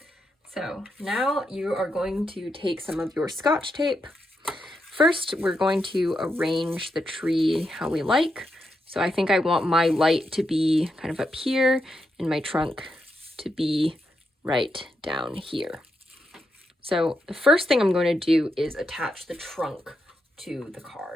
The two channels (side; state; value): both; normal; correlation 0.84